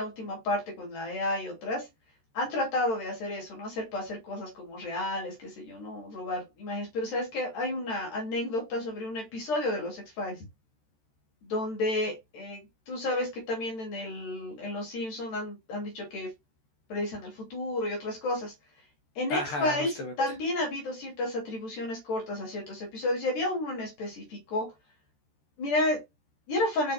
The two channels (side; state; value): right; late; 13 ms